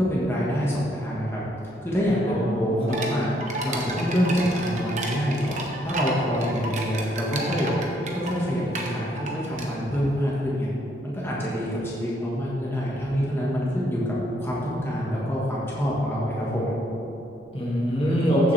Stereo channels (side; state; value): right; noise; rumble, 29 dB below the sound